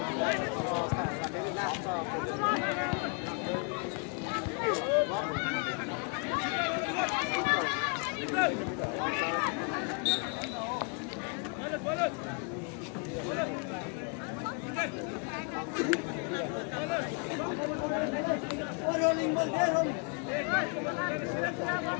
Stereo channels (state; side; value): quieter; right; 37.6 dB